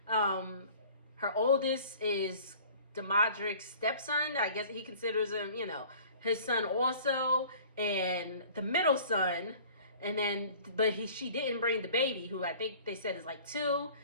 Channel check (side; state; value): both; inverted; correlation -0.47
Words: her oldest is the Modric's stepson. I guess he considers him, you know, his son also. And the middle son, and then, but she didn't bring the baby, who I think they said is like 2.